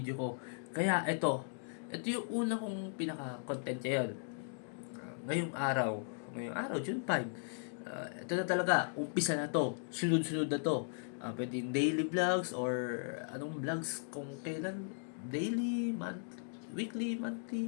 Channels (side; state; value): right; silent; digital silence